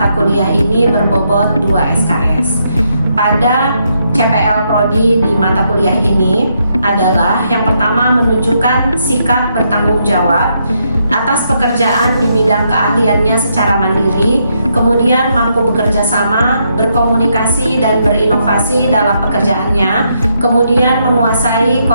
kuliah ini berbobot 2 SKS. Pada CPL Prodi di mata kuliah ini adalah yang pertama, menunjukkan sikap bertanggung jawab atas pekerjaan di bidang keahliannya secara mandiri, kemudian mampu bekerja sama, berkomunikasi dan berinovasi dalam pekerjaannya, kemudian menguasai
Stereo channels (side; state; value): both; inverted; correlation -0.77